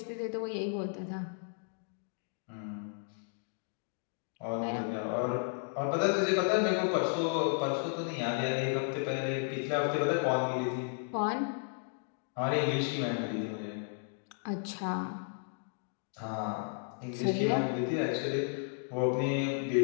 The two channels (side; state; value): right; silent; 55 dB below the other